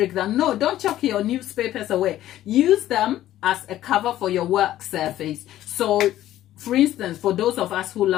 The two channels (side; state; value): right; quieter; 13.4 dB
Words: that no, don't chuck your newspapers away. Use them as a cover for your work surface. So, for instance, for those of us who